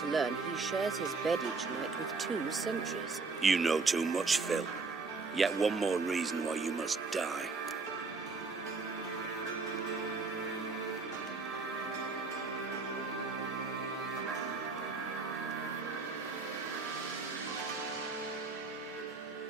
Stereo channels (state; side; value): quieter; left; 4.2 dB